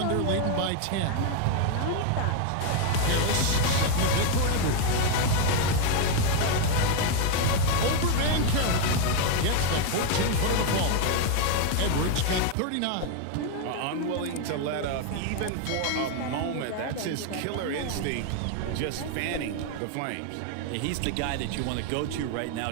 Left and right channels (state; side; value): different; both; correlation 0.01